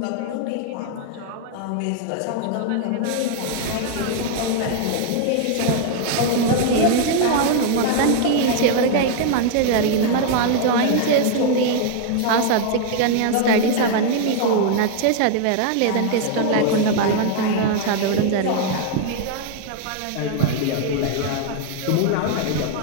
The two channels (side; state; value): both; different; correlation 0.00